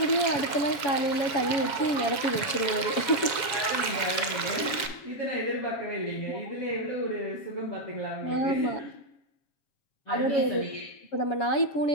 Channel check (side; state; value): right; late; 7.3 ms